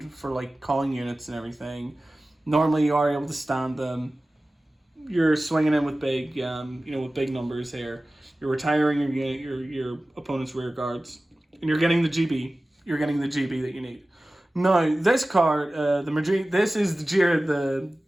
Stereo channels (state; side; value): normal; both; correlation 0.96